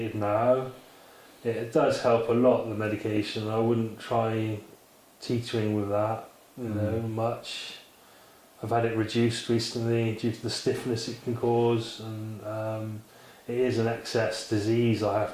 now. It does help a lot, the medication. I wouldn't try teetering with that, much. I've had it reduced recently due to the stiffness it can cause, and it is an excess disease I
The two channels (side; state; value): both; identical; correlation 1.00